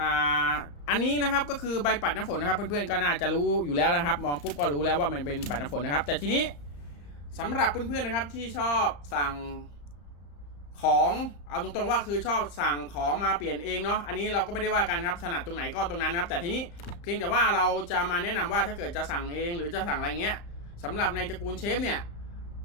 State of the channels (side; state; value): right; late; 35 ms